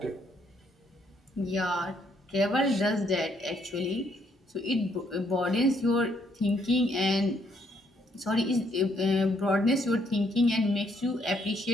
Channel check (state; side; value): normal; both; correlation 0.71